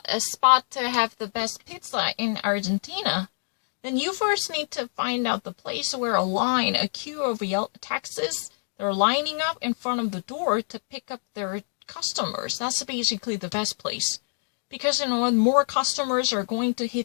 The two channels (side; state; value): right; silent; digital silence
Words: spot to have the best pizza in Argentina, then you first need to find out the place where a queue of taxis, they're lining up in front of the door to pick up their customers. That's basically the best place. Because, more customers are going to